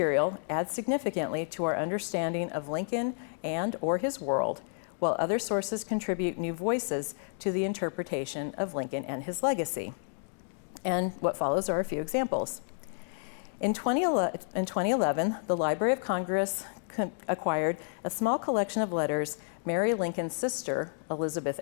adds significantly to our understanding of Lincoln and or his world, while other sources contribute new voices to the interpretation of Lincoln and his legacy. And what follows are a few examples. In 2011, the Library of Congress acquired a small collection of letters Mary Lincoln's sister, Elizabeth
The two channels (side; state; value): right; silent; digital silence